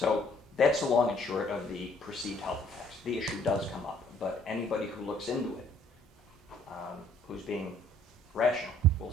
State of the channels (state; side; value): normal; both; correlation 0.61